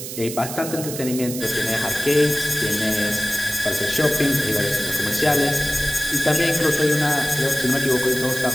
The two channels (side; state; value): right; noise; hiss, 8 dB below the sound